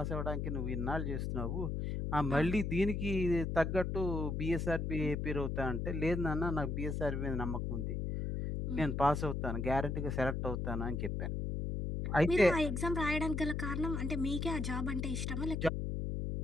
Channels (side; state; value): left; noise; hum, 2 dB below the sound